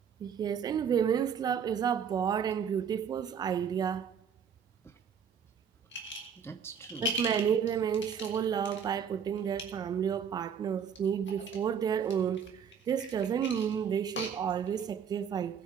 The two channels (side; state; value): left; quieter; 7.4 dB